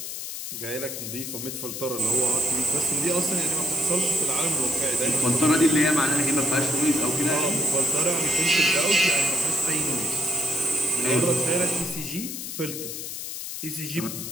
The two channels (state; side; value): noise; left; hiss, 7 dB below the sound